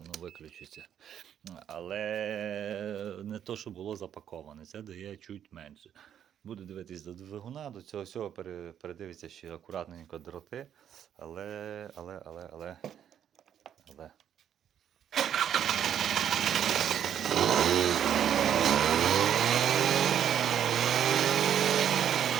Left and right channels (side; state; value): left; quieter; 9.5 dB